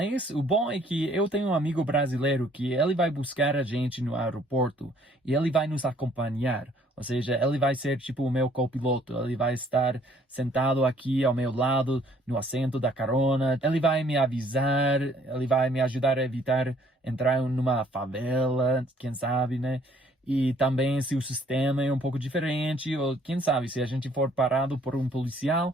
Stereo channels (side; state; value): both; normal; correlation 0.61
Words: o bom é que eu tenho um amigo brasileiro que ele vai buscar a gente no aeroporto e ele vai nos acompanhar. Ou seja, ele vai ser tipo o meu copiloto. Ele vai estar sentado aqui ao meu lado, no assento da carona. Ele vai me avisar, ele vai me ajudar a evitar entrar numa favela, quem sabe, né? E também se o sistema é um pouco diferente, ou quem sabe, se a gente for parado por um policial,